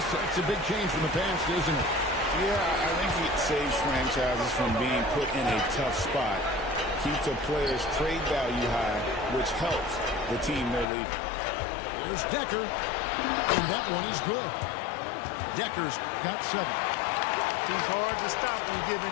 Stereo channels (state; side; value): drops out; right; at 10.9 s